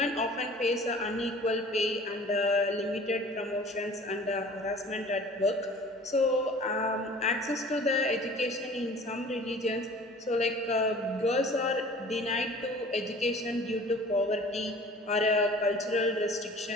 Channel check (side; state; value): both; normal; correlation 0.46